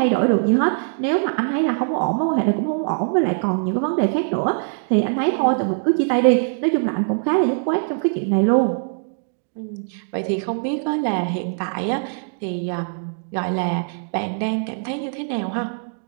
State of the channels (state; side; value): silent; left; digital silence